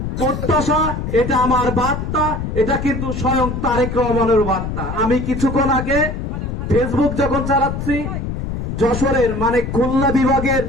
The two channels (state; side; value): noise; left; rumble, 4 dB below the sound